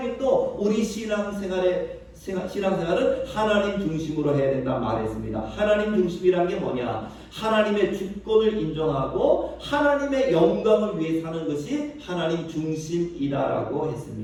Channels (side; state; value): both; identical; correlation 1.00